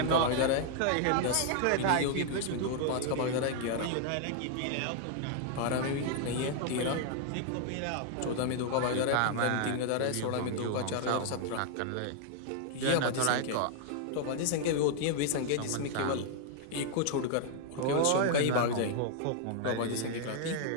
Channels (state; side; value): different; both; correlation 0.00